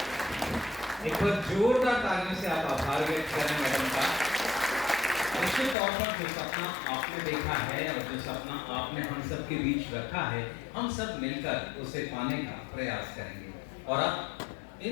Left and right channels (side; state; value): right; drops out; at 5.8 s